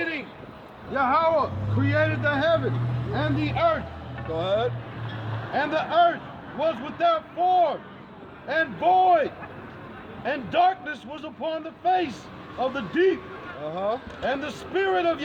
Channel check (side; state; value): both; identical; correlation 1.00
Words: Yahweh created the heaven and the earth. Go ahead. And the earth was without form and void, and darkness was upon the face of the deep. And the Spirit of